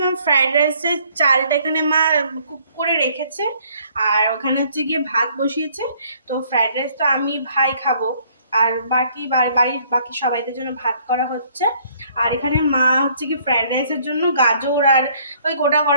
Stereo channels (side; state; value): both; inverted; correlation -0.62